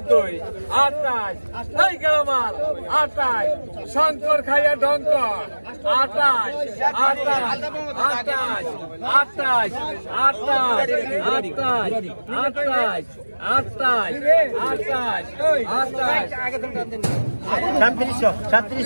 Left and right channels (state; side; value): inverted; both; correlation -1.00